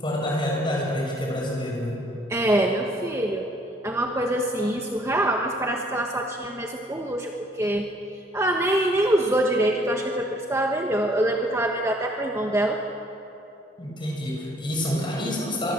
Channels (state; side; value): normal; both; correlation 0.61